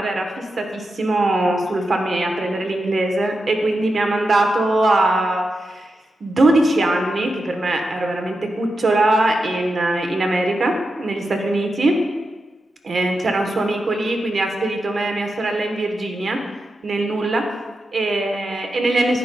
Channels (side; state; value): both; normal; correlation 0.89